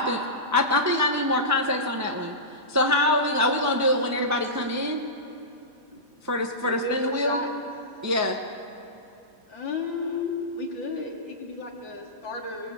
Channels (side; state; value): both; normal; correlation -0.18